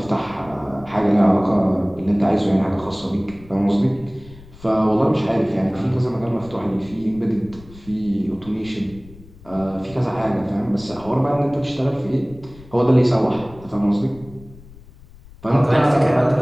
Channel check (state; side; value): noise; left; rumble, 21 dB below the sound